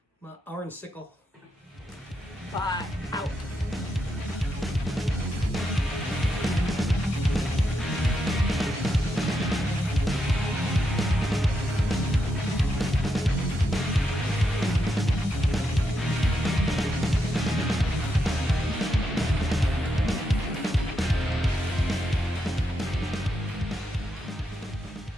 My orange sickle. Bye. Out.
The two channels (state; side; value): normal; both; correlation 0.83